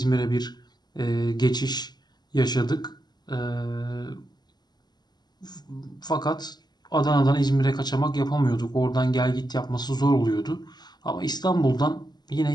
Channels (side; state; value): right; late; 0.20 ms